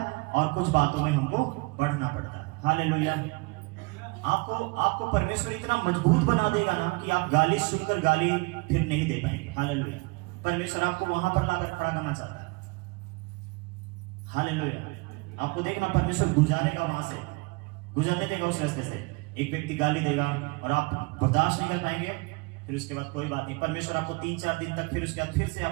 और कुछ बातों में हमको बढ़ना पड़ता है। हालेलुया। आपको परमेश्वर इतना मजबूत बना देगा ना कि आप गाली सुनकर गाली फिर नहीं दे पाएंगे। हालेलुया। परमेश्वर आपको वहां पर लाकर खड़ा करना चाहता है। हालेलुया। आपको देखना, परमेश्वर गुजारेगा, वहां से गुजरने देगा उस रास्ते से। एक व्यक्ति गाली देगा और आप बर्दाश्त नहीं कर पाएंगे, फिर उसके बाद कोई बात नहीं, परमेश्वर आपको 3-4 दिन तक, फिर उसके बाद फिर से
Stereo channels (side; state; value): left; quieter; 27.5 dB